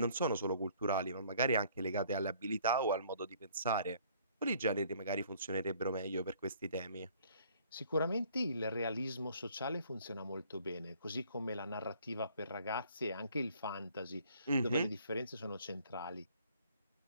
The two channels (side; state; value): both; inverted; correlation -0.59